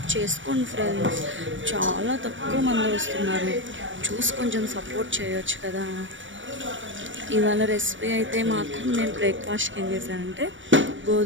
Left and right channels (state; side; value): late; left; 0.56 ms